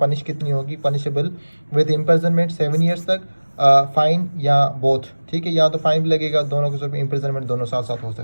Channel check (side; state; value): both; inverted; correlation -1.00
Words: कितनी होगी? पनिशेबल विद इम्प्रिजनमेंट 7 ईयर्स तक, फाइन या बोथ। ठीक है, या तो फाइन भी लगेगा, दोनों के साथ इम्प्रिजनमेंट दोनों साथ साथ हो